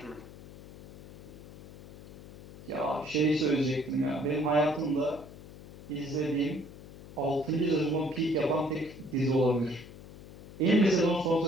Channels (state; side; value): noise; left; hum, 16 dB below the sound